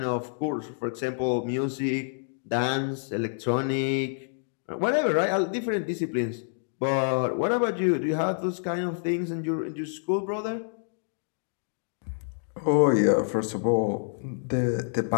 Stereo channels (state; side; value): silent; right; digital silence